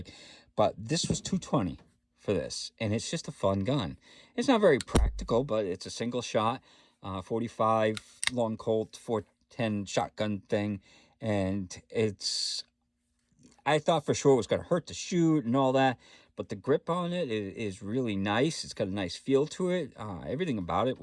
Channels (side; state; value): both; identical; correlation 1.00